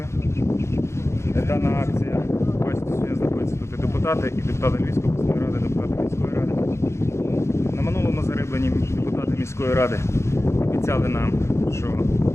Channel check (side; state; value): right; late; 0.13 ms